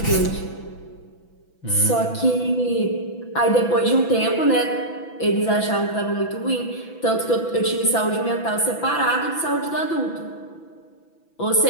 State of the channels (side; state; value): right; late; 6.0 ms